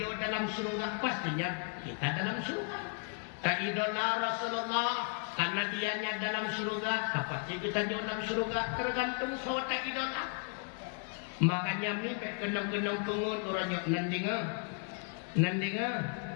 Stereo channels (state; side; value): quieter; right; 38.8 dB